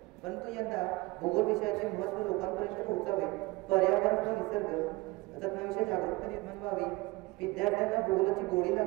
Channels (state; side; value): quieter; left; 22.3 dB